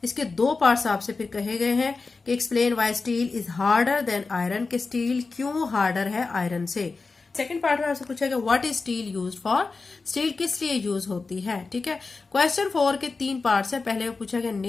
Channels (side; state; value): right; quieter; 4.1 dB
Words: इसके 2 पार्ट्स आपसे फिर कहे गए हैं कि explain why steel is harder than iron, के स्टील क्यों हार्डर है आयरन से। सेकंड पार्ट में आपसे पूछा गया what is steel used for, steel किस लिए यूज होती है। ठीक है, क्वेश्चन 4 के 3 पार्ट्स है। पहले में पूछा गया